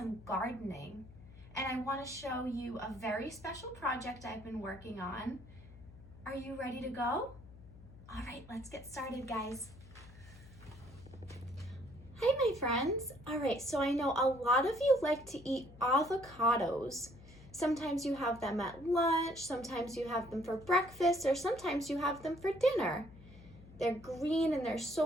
gardening. And I want to show you a very special project I've been working on. Are you ready to go? All right, let's get started, guys. Hi, my friends. All right, so I know a lot of you like to eat avocados. Sometimes you have them at lunch, sometimes you have them for breakfast, or sometimes you have them for dinner. They're green and they're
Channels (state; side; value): noise; left; hum, 19 dB below the sound